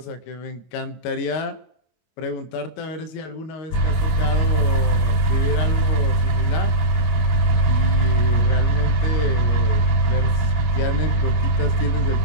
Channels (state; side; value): late; right; 25 ms